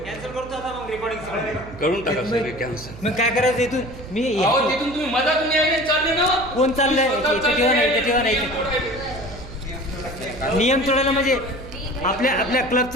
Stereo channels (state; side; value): noise; right; hum, 15 dB below the sound